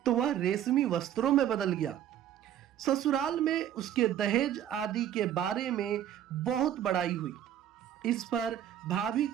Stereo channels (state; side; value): quieter; left; 10.7 dB